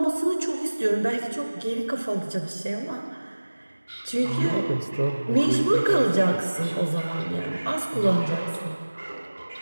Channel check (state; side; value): inverted; both; correlation -1.00